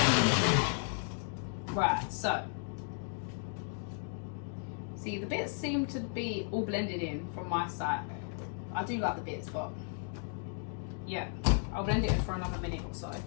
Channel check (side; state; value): right; silent; 55 dB below the other